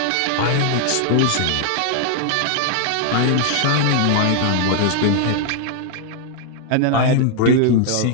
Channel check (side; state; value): both; different; correlation 0.00